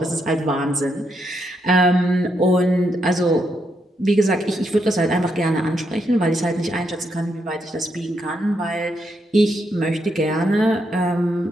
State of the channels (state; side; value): normal; both; correlation 0.79